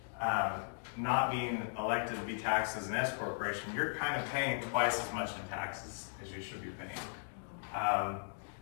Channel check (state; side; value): silent; right; digital silence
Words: not being elected to be taxed as an S corporation, you're kind of paying twice as much in taxes as you should be paying.